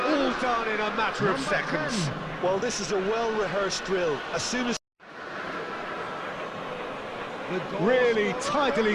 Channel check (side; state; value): both; identical; correlation 1.00